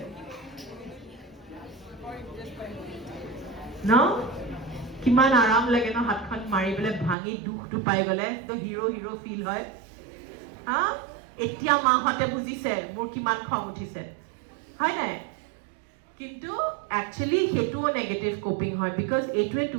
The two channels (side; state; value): left; drops out; at 7.2 s